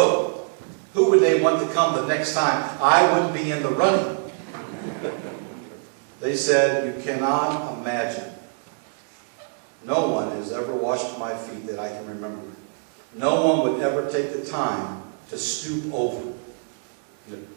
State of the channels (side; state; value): left; silent; 62 dB below the other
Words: who would they want to come the next time? I wouldn't be in the running. They said, "You cannot imagine. No one has ever washed my feet that I can remember. No one would ever take the time to stoop over,